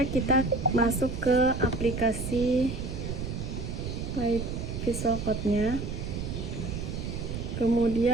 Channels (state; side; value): noise; right; rumble, 5 dB below the sound